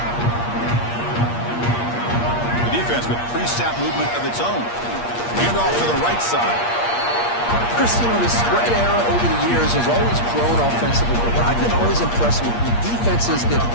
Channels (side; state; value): right; late; 8.5 ms